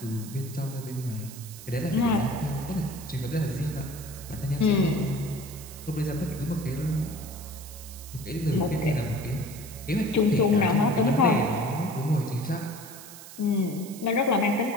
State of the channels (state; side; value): noise; right; hiss, 15 dB below the sound